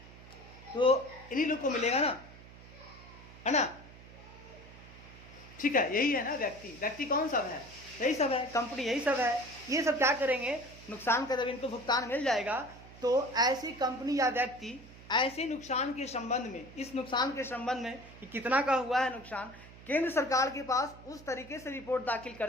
तो इन्हीं लोग को मिलेगा ना, है ना। ठीक है, यही है ना व्यक्ति कौन सब है, यही सब है, कंपनी यही सब है। ये सब क्या करेंगे, नुकसान का जब इनको भुगतान मिल जाएगा तो ऐसी कंपनी या व्यक्ति ऐसे नुकसान के संबंध में, इस नुकसान के संबंध में कि कितना का हुआ है नुकसान, केंद्र सरकार के पास उस तरीके से रिपोर्ट दाखिल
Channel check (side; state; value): right; noise; hum, 19 dB below the sound